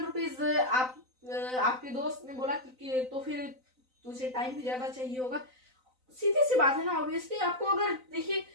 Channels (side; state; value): left; late; 3.9 ms